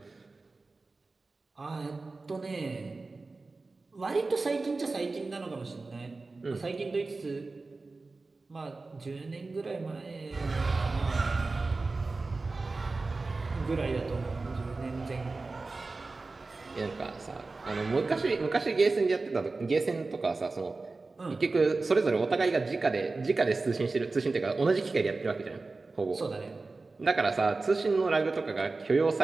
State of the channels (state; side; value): quieter; left; 3.6 dB